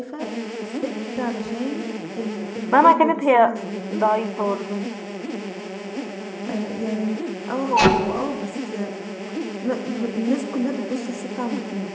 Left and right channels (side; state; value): both; identical; correlation 1.00